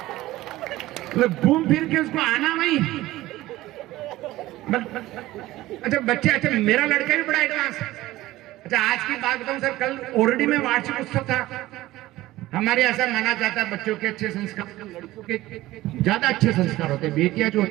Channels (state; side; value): quieter; left; 16.9 dB